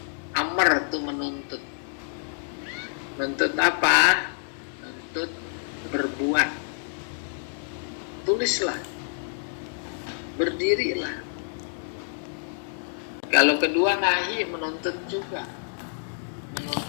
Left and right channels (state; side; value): silent; right; digital silence